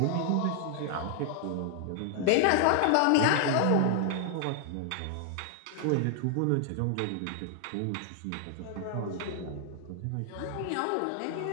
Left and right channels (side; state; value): both; different; correlation 0.00